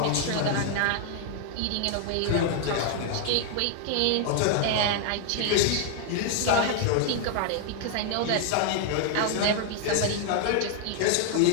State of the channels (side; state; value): both; different; correlation 0.00